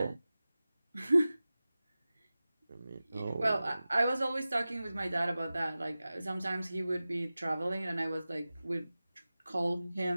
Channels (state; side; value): inverted; both; correlation -0.96